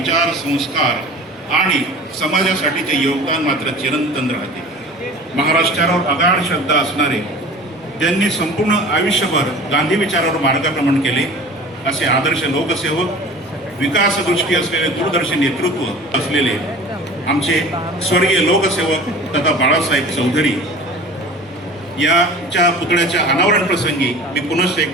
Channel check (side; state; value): both; normal; correlation 0.41